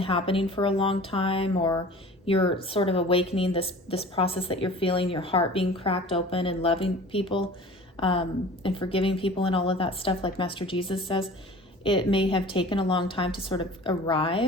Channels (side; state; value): both; normal; correlation 0.43